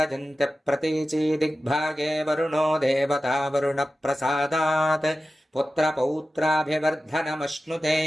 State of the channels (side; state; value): both; normal; correlation 0.94